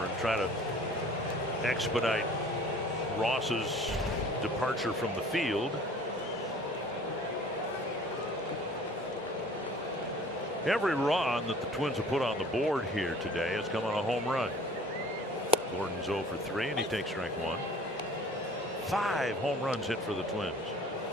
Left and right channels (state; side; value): normal; both; correlation 0.49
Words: and try to expedite Ross's departure from the field. Every run that the Twins have put on the board here today has come on a home run. Gordon's 0 for 3, and he takes strike 1. 5 home runs hit for the Twins.